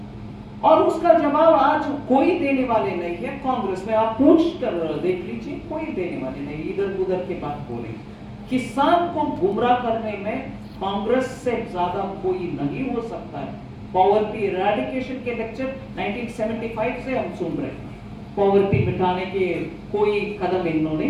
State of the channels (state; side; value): identical; both; correlation 1.00